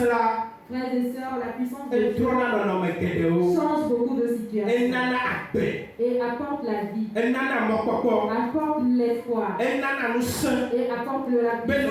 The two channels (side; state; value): both; identical; correlation 1.00